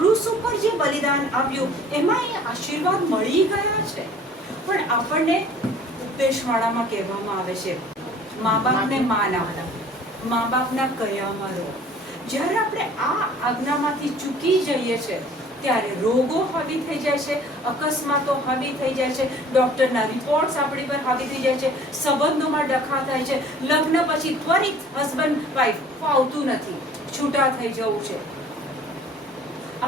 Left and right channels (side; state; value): both; normal; correlation 0.50